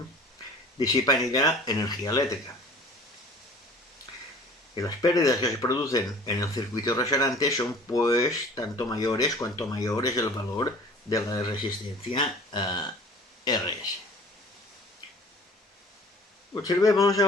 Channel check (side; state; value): both; normal; correlation 0.46